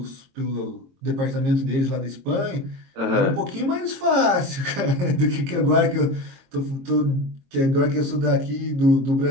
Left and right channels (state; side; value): late; left; 22 ms